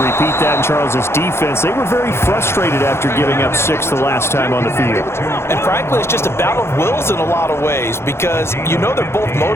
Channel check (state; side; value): late; right; 0.12 ms